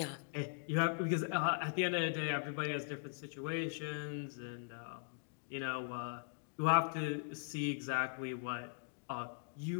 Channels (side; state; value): right; silent; digital silence